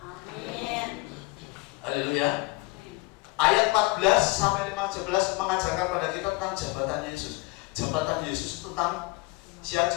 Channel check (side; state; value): right; quieter; 23.6 dB